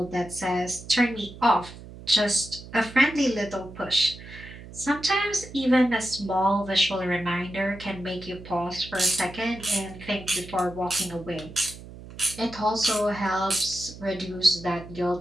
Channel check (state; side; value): noise; right; hum, 15 dB below the sound